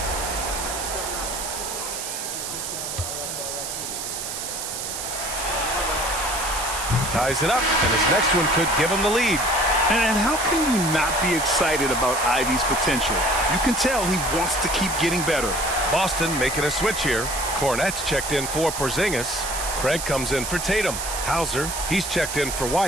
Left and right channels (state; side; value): noise; right; hiss, 5 dB below the sound